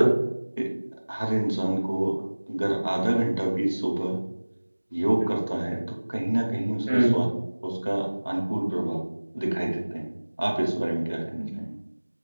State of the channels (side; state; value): both; inverted; correlation -1.00